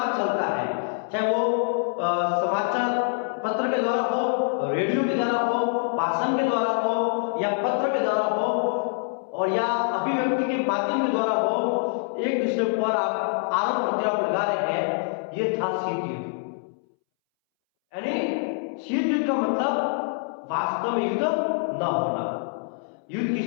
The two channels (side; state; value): right; silent; 62 dB below the other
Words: चलता है, चाहे वो समाचार पत्र के द्वारा हो, रेडियो के द्वारा हो, भाषण के द्वारा हो, या पत्र के द्वारा हो, और या व्यक्ति के माध्यम के द्वारा वो एक दूसरे पर आरोप प्रत्यारोप लगा रहे हैं, ये था शीत युद्ध। यानी शीत युद्ध का मतलब वास्तव में युद्ध न होना, युद्ध की